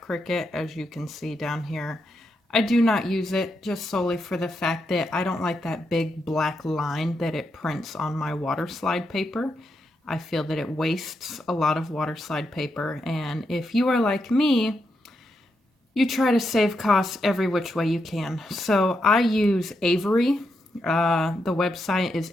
Cricut, as you can see down here. I do not use it just solely for the fact that I don't like that big black line that it prints on my water slide paper. I feel that it wastes a lot of water slide paper, and if you are like me, you try to save costs every which way you can. So I use Avery. The website is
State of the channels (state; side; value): normal; both; correlation 0.83